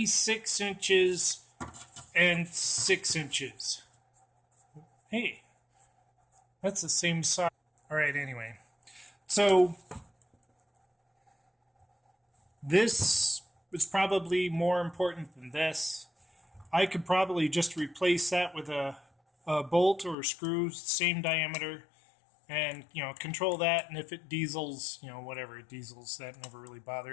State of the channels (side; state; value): right; drops out; at 20.2 s